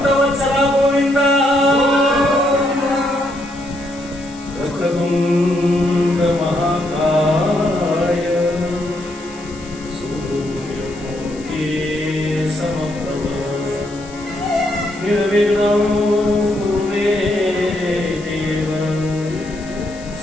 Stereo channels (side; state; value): left; noise; hiss, 20 dB below the sound